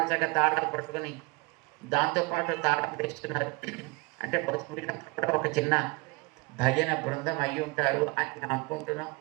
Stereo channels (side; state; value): left; quieter; 27.3 dB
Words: చక్కగా తాళాలు పట్టుకుని దాంతోపాటు తాళం తెస్తున్నారు. అంటే కూడా ఒక చిన్న భజన బృందం అయి ఉంటారు అని మేము అనుకుంటున్నాం.